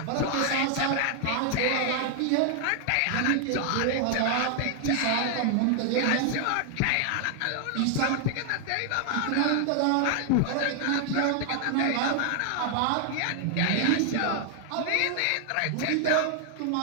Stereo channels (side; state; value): both; different; correlation 0.00